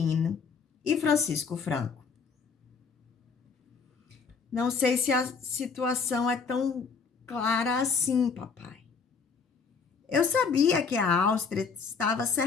e Francisco Franco. Não sei se a situação é tão clara assim, papai. Eu sabia que a Áustria estava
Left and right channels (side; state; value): right; quieter; 5.4 dB